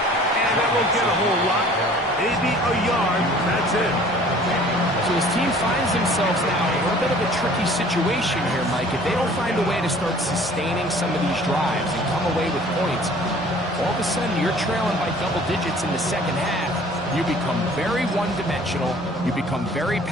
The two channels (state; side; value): normal; both; correlation 0.51